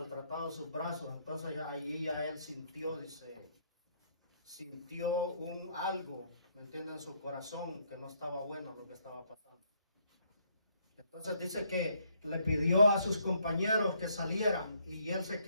sus brazos. Entonces ahí ya él sintió, dice, algo, ¿me entienden? En su corazón, que no estaba bueno lo que estaba pasando. Entonces dice que le pidió a sus compañeros que salieran, y él se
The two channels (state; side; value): inverted; both; correlation -0.69